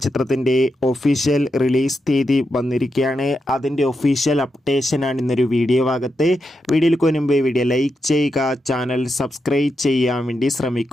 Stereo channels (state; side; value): normal; both; correlation 0.86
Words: ചിത്രത്തിൻ്റെ ഒഫീഷ്യൽ റിലീസ് തീയതി വന്നിരിക്കുകയാണ്. അതിൻ്റെ ഒഫീഷ്യൽ അപ്ഡേഷനാണ് ഇന്നൊരു വീഡിയോ ഭാഗത്ത്. വീഡിയോയിൽ മുൻപ് വീഡിയോ ലൈക്ക് ചെയ്യുക, ചാനൽ സബ്സ്ക്രൈബ് ചെയ്യാൻ വേണ്ടി